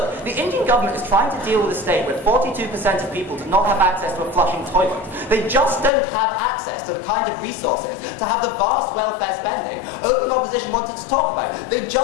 the Indian government is trying to deal with a state where 42% of people do not have access to a flushing toilet. They just don't have access to the kind of resources to have the vast welfare spending opening opposition wanted to talk about. They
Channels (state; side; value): drops out; right; at 5.9 s